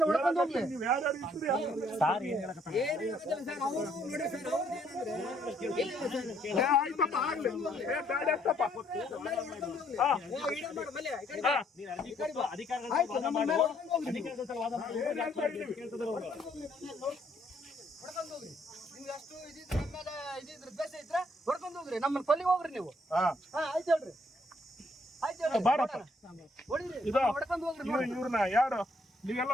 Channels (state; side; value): normal; both; correlation 0.68